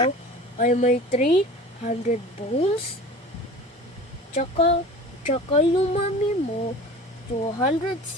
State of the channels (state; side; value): normal; both; correlation 0.39